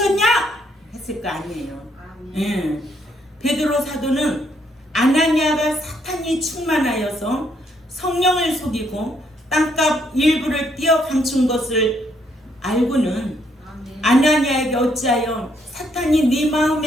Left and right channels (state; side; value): normal; both; correlation 0.72